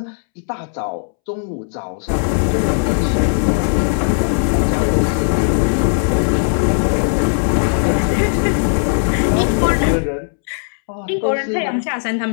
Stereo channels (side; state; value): right; silent; 68 dB below the other